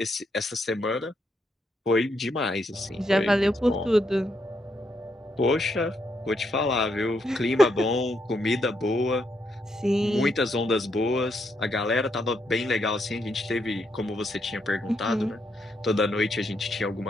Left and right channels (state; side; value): normal; both; correlation 0.78